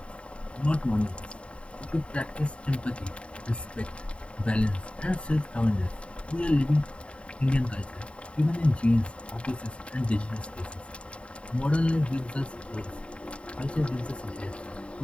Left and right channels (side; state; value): right; late; 0.059 ms